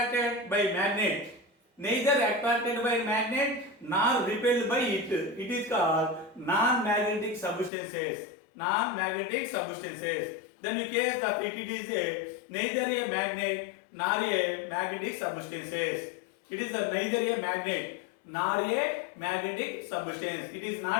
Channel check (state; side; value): drops out; right; at 7.7 s